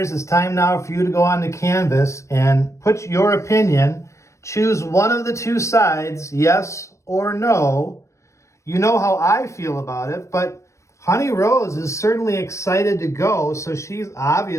it's time now for you to go on to Canvas and put your opinion. Choose one of the two sides, yes or no. You know how I feel about it, but Honey Rose is certainly excited to go, so she's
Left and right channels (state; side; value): late; right; 0.14 ms